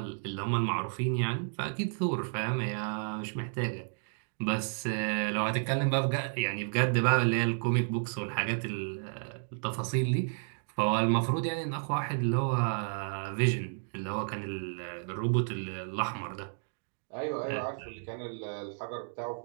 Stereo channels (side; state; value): left; silent; digital silence